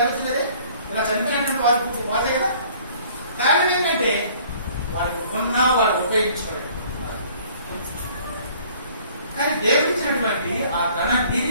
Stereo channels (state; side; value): inverted; both; correlation -0.55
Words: ఇలా చనిపోయినటువంటి వారి ఫుడ్ పోతాయి కదా. కారణం ఏంటంటే వాళ్ళకి ఉన్నా వాళ్ళు ఉపయోగించుకోలేదు. కానీ దేవుడిచ్చినటువంటి ఆ ధన